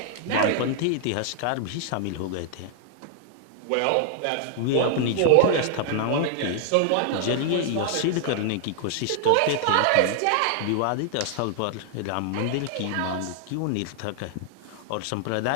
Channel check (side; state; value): both; different; correlation 0.00